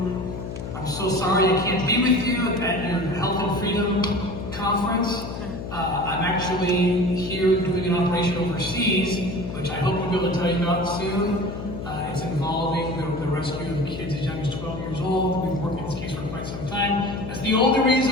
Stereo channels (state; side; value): noise; left; hum, 8 dB below the sound